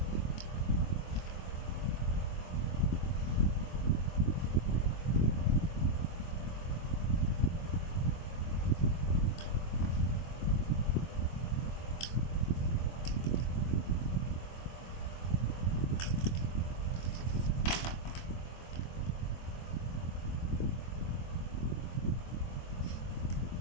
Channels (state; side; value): late; right; 24 ms